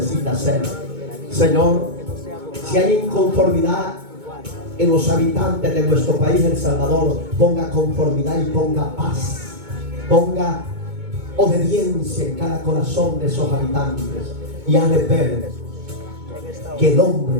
hacer. Señor, si hay inconformidad en los habitantes de nuestro país, El Salvador, ponga conformidad y ponga paz, ponga obediencia en cada corazón de esos habitantes y hazle ver que el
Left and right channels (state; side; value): late; left; 2.2 ms